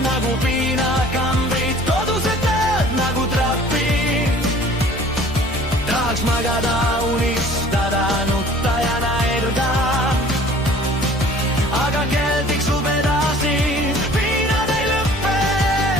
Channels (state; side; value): normal; both; correlation 0.50